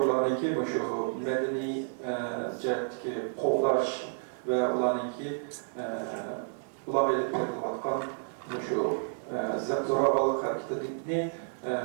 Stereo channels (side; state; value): left; silent; 57 dB below the other